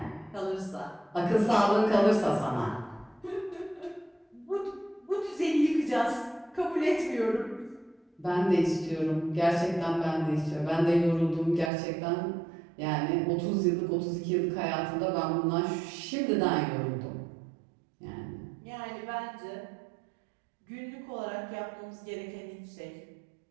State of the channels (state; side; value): drops out; left; at 11.7 s